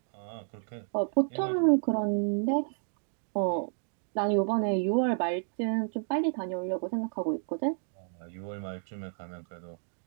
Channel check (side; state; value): left; silent; 57 dB below the other